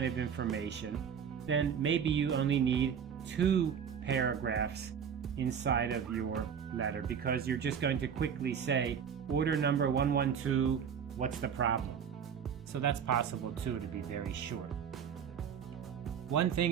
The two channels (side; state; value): left; quieter; 7.6 dB